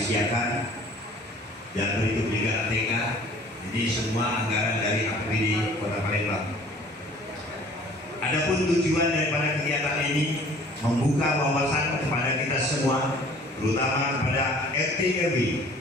siapkan, dan berikut juga ATK. Ini semua anggaran dari APBD Kota Palembang. Adapun tujuan daripada kegiatan ini membuka wawasan kepada kita semua, terutama kepada RT RW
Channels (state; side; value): normal; both; correlation 0.51